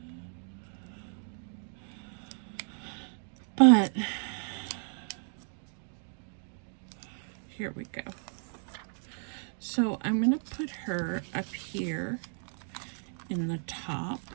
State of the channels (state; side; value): silent; left; 55 dB below the other